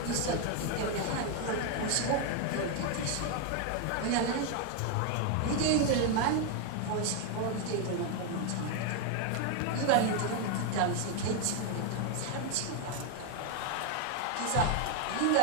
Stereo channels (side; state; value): both; different; correlation 0.01